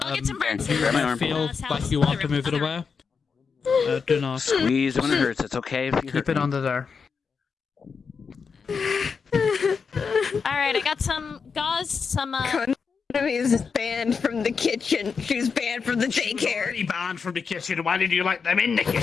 I'll get some burn Grab my arm. Feel like you want to move it away. Do not Squeeze when it hurts. It's okay if you keep hurt it me. under there. Alright, I got some gauze, some Konami is banned from the kitchen. She's banned from the daycare. Already banned from the kitchen. Why did you like them in the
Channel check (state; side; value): quieter; right; 5.6 dB